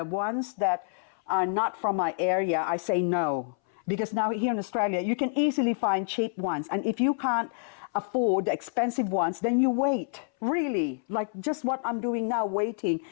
ones that are not from my area, I say no. Because now here in Australia, you can easily find cheap ones. And if you can't afford the expensive ones, then you wait. Really, like just what I'm doing now, waiting.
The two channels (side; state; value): right; silent; 59 dB below the other